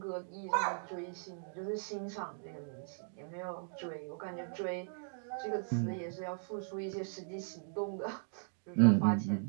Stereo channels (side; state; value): left; silent; digital silence